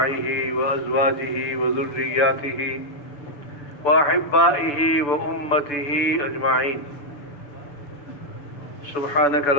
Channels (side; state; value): right; late; 6.9 ms